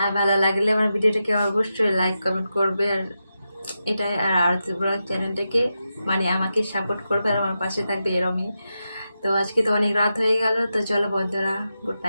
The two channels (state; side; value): inverted; both; correlation -0.89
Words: আর ভালো লাগলে আমার ভিডিওটাকে অবশ্যই লাইক কমেন্ট করবে। আর এটাই, আর আরতি ব্লগ চ্যানেলটাকে মানে আমাকে সাপোর্ট করবে আর আমার পাশে থাকবে এরমই। তো আজকে তো অনেক রাত হয়ে গেল। তো চলো বন্ধুরা, গুড